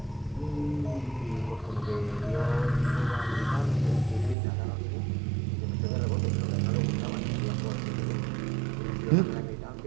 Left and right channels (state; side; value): drops out; left; at 4.4 s